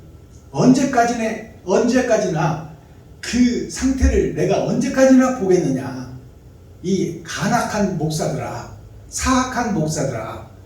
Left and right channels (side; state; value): both; identical; correlation 1.00